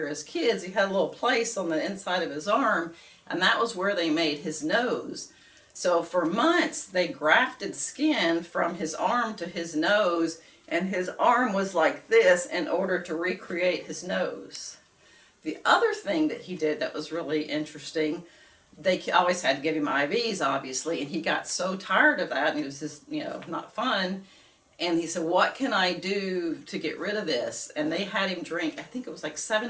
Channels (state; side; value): identical; both; correlation 1.00